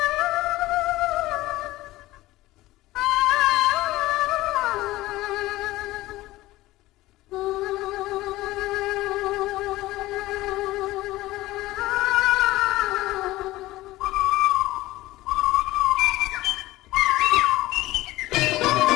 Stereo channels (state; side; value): quieter; right; 17.7 dB